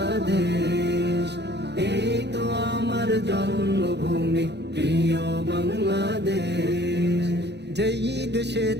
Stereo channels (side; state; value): left; late; 0.50 ms